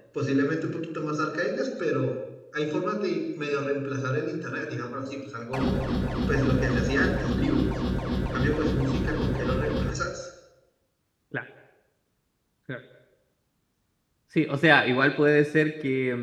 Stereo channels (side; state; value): both; identical; correlation 1.00